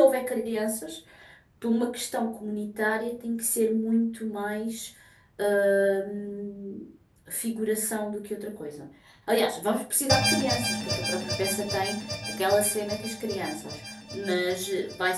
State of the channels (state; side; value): identical; both; correlation 1.00